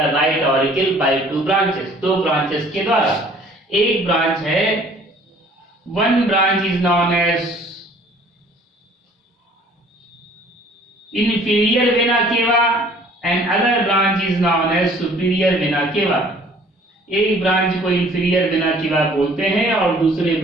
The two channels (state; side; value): normal; both; correlation 0.54